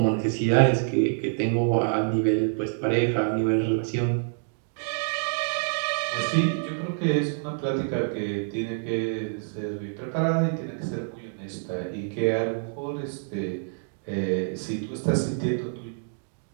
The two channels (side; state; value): left; silent; digital silence